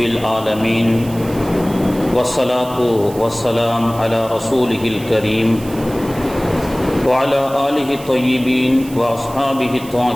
العالمين، والصلاة والسلام على رسوله الكريم وعلى آله الطيبين وأصحابه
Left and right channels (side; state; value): right; noise; hiss, 18 dB below the sound